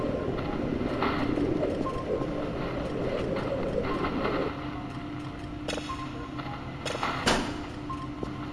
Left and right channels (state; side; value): identical; both; correlation 1.00